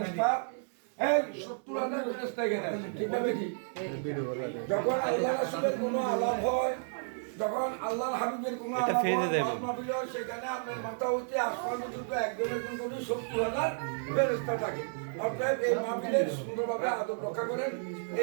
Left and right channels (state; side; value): silent; left; digital silence